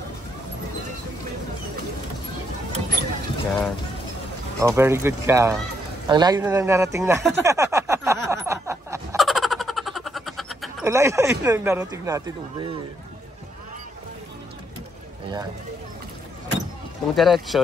Yan. Oh, very good ka. Ang layo na lang narating natin. Ang layo na lang narating natin, Ube. Ayan. Kung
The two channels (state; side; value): normal; both; correlation 0.75